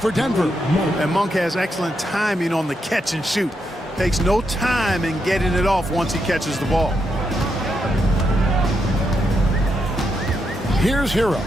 Denver. And Monk has excellent timing on the catch and shoot. Takes no time in getting it off once he catches the ball. Here's Hero.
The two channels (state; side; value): normal; both; correlation 0.82